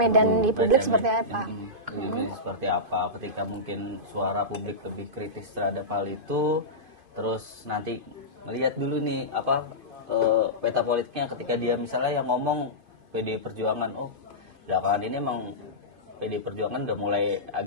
di publik Baca seperti med- apa? Seperti apa? Ketika mungkin suara publik lebih kritis terhadap hal itu, terus nanti melihat dulu nih peta politiknya ketika dia misalnya yang ngomong PDI Perjuangan, oh belakangan ini emang PDI Perjuangan udah mulai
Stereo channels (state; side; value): late; left; 2.5 ms